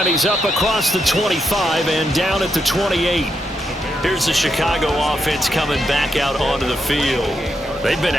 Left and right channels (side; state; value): both; normal; correlation 0.82